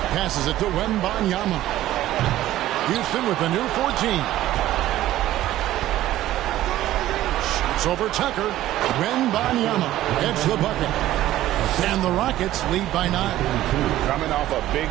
Passes it to Wembanyama. Houston with a new 14. Shoots over Tucker. Wembanyama gets the bucket. And the Rockets lead by 9. Coming off a big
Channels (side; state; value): left; quieter; 14.3 dB